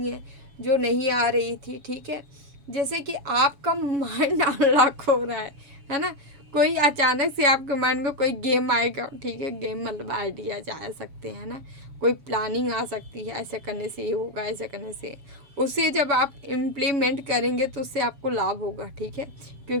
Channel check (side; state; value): left; late; 7.1 ms